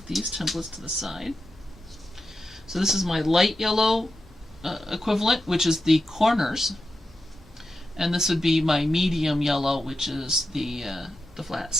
these templates to the side. So this is my light yellow equivalent, which is the corners, and this would be my medium yellow, which is the flat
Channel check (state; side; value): normal; both; correlation 0.89